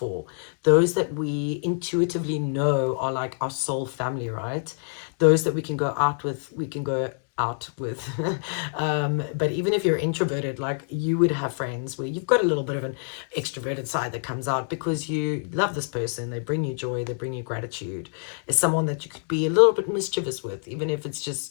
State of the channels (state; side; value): silent; right; digital silence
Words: those that we intuitively know are like our soul family, right? Those that we can go out with, but even if you're introverted, like you would have friends where you've got a little bit of an extroverted side that comes out because you love this person, they bring you joy, they bring you gratitude. It's someone that you could be a little bit mischievous with, even if it's